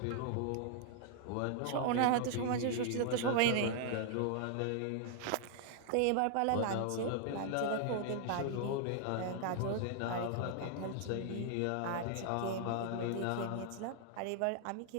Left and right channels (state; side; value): different; both; correlation 0.00